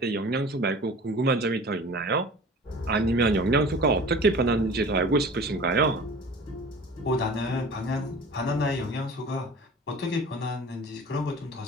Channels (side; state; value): both; normal; correlation 0.41